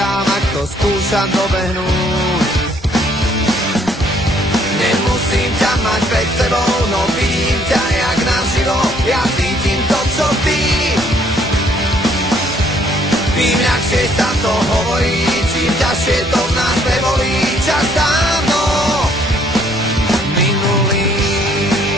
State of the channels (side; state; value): both; normal; correlation 0.64